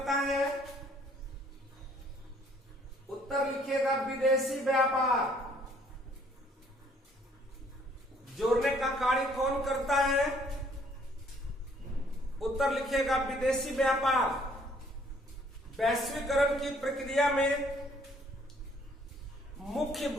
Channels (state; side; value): normal; both; correlation 0.62